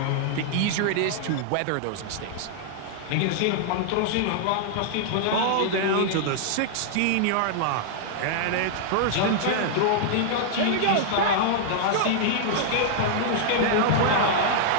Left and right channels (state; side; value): different; both; correlation -0.01